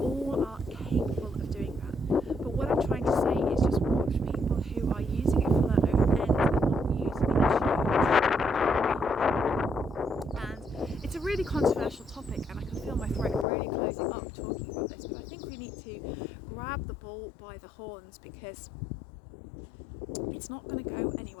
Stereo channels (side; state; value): right; drops out; at 13.5 s